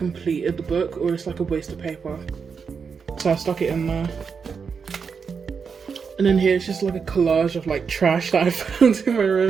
the book, or it's like a waste of paper. So I stuck it in there. And then here it's just like a collage of like trash that I found in my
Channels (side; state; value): left; quieter; 5.9 dB